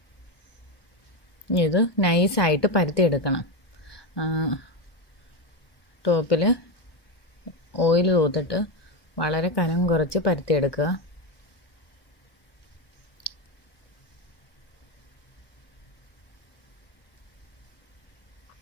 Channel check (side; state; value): right; late; 1.1 ms